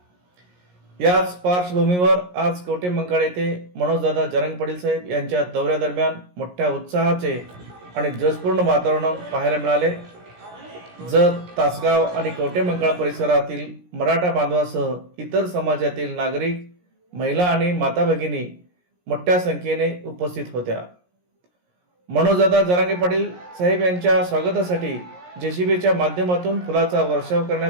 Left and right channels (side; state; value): left; late; 17 ms